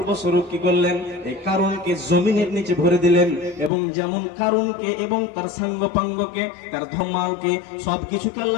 বস্বরূপ কি করলেন, এই কারণকে জমিনের নিচে ভরে দিলেন। এবং যেমন কারণকে এবং তার সাঙ্গপাঙ্গকে, তার ধমালকে, সবকিছুকে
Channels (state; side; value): drops out; right; at 3.7 s